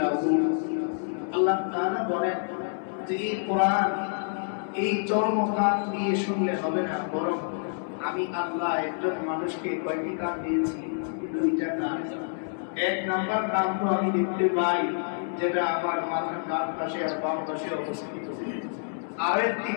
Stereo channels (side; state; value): right; silent; 58 dB below the other